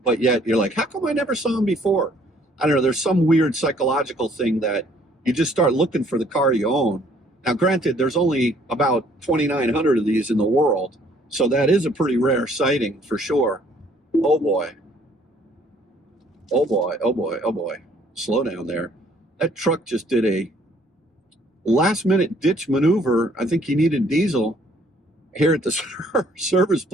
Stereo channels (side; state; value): both; normal; correlation 0.61